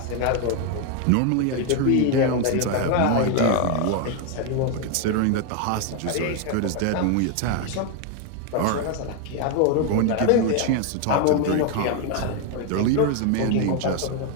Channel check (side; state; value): both; different; correlation 0.01